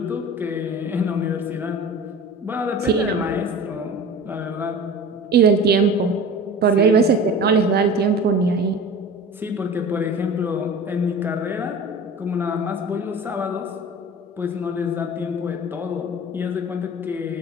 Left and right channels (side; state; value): both; normal; correlation 0.37